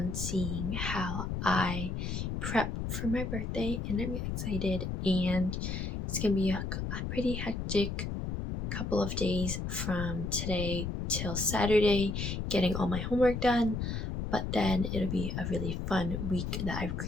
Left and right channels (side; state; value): left; noise; rumble, 3 dB below the sound